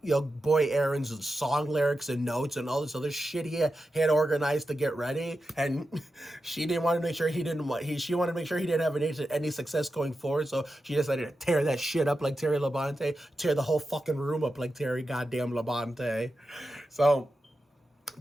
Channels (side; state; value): both; normal; correlation 0.90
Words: boy Erin's song lyrics and notes and all this other shit he had organized to get ready, and she wanted to make sure he didn't have any success going forward, so she decided to tear that shit up like Terry Labonte, tear the whole fucking room up like Terry goddamn Labonte. So